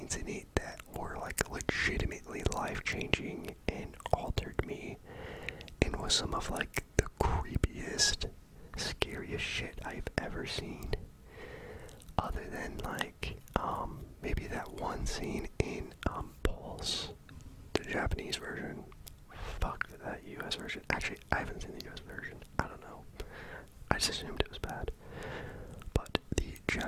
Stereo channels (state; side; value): identical; both; correlation 1.00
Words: in it that were like legitimately life-changing and altered me, and was some of like the creepiest, scariest shit I've ever seen. Other than like maybe that one scene in Pulse, the Japanese version. Fuck that US version. Actually, I haven't seen the US version. I don't know. I just assumed it was bad. But the